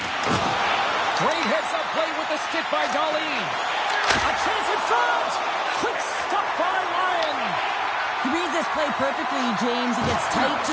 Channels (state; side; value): identical; both; correlation 1.00